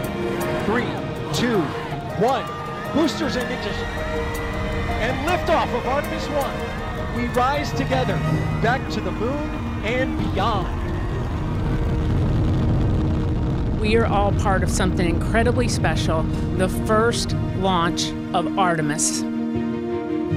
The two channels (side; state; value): both; identical; correlation 1.00